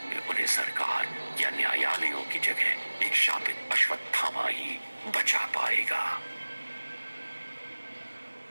में उन्हें सरकार या न्यायालयों की जगह एक शापित अश्वत्थामा ही बचा पाएगा।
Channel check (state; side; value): inverted; both; correlation -1.00